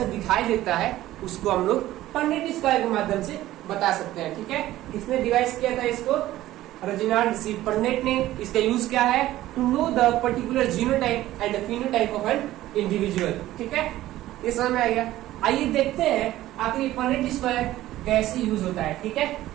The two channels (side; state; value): left; quieter; 15.0 dB